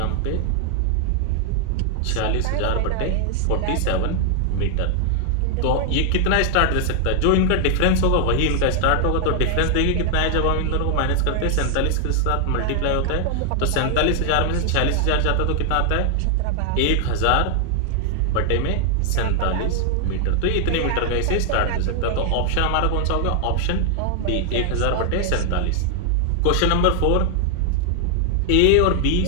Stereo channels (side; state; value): both; different; correlation 0.00